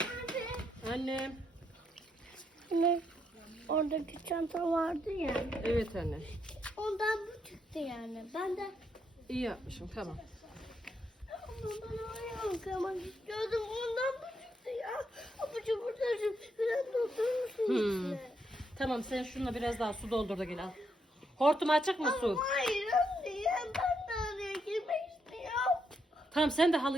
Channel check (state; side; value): normal; both; correlation 0.78